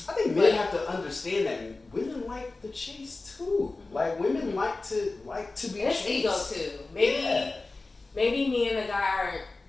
I think men have to understand that women like the chase too. Like women like to be it's chased. ego too. Maybe me and the guy aren't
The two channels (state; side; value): quieter; right; 3.4 dB